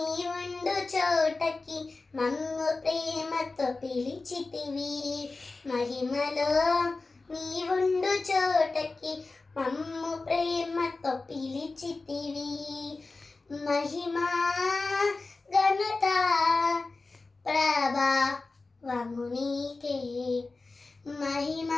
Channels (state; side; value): quieter; right; 3.6 dB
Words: ఉండు చోటకి మమ్ము ప్రేమతో పిలిచితివి. మహిమలో నీ ఉండు చోటకి మమ్ము ప్రేమతో పిలిచితివి. మహిమ ఘనత ప్రభావము నీకే, మహిమ